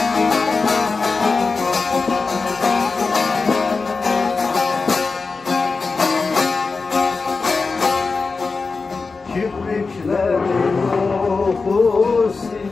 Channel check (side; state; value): right; quieter; 4.3 dB